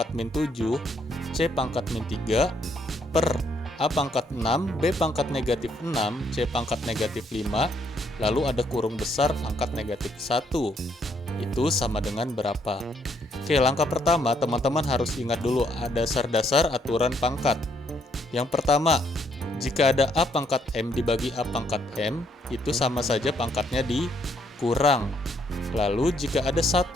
min 7, C pangkat min 3, per A pangkat 6, B pangkat negatif 6, C pangkat negatif 5, lalu ada kurung besar pangkat negatif 1. Itu sama dengan berapa? Oke, langkah pertama teman-teman harus ingat dulu dasar-dasar aturan pangkat. Yang pertama, jika ada A pangkat M dibagi A pangkat M, itu sama saja pangkatnya dikurang. Lalu jika ada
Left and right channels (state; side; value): normal; both; correlation 0.71